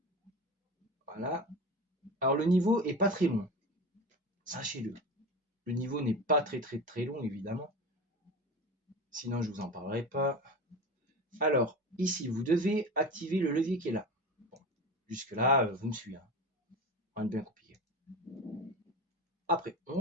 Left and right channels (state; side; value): normal; both; correlation 0.29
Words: Voilà. Alors le niveau est pas très long, sachez-le. Le niveau n'est pas très long, évidemment. Sinon, je vous en parlerai pas. Alors, ici, vous devez activer le levier qui est là. Bon, jusque-là, vous me suivez. Hein. Rien de bien compliqué. Après,